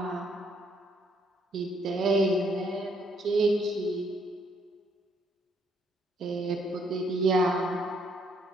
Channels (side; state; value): both; normal; correlation 0.69